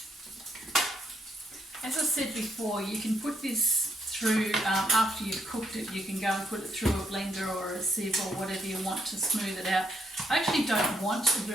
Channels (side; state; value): both; normal; correlation 0.76